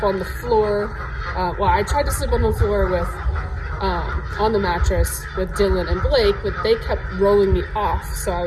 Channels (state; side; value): identical; both; correlation 1.00